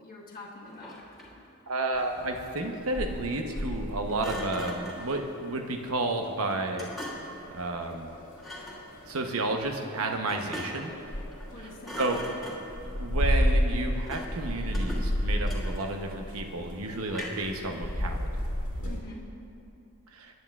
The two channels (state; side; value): normal; both; correlation 0.42